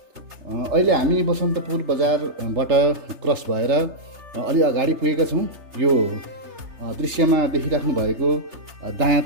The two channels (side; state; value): left; late; 3.3 ms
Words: अहिले हामी बसन्तपुर बजारबाट क्रस भएर अलि अगाडि पुगेका छौँ। यो दृश्यमा देखिराख्नु भएको